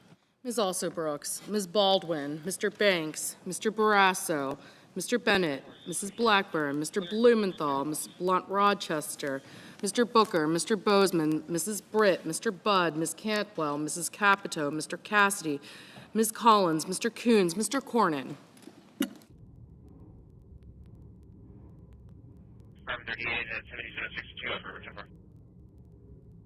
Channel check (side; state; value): both; identical; correlation 1.00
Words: Ms. Also Brooks, Ms. Baldwin, Mr. Banks, Mr. Barrasso, Mr. Bennett, Mrs. Blackburn, Mr. Blumenthal, Ms. Blunt Rochester, Mr. Booker, Mr. Bozeman, Mrs. Britt, Mr. Budd, Ms. Cantwell, Mrs. Capito, Mr. Cassidy, Ms. Collins, Mr. Coons, Mr. Cornyn. Department 38 at 7762, over, Temper.